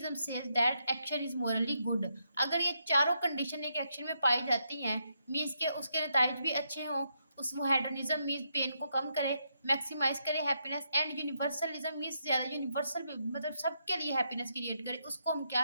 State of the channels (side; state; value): both; inverted; correlation -0.80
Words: says that action is morally good. अगर ये चारों कंडीशन एक एक्शन में पाई जाती हैं, मीन्स के उसके नताइज भी अच्छे हों, उस वो हेडोनिज्म मीन्स पेन को कम करे, मैक्सिमाइज करे हैप्पीनेस, एंड यूनिवर्सलिज्म मीन्स ज़्यादा यूनिवर्सल मतलब सबके लिए हैप्पीनेस क्रिएट करे, उसको हम